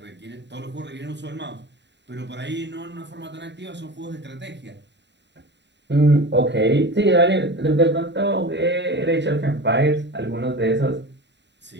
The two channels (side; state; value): left; late; 0.52 ms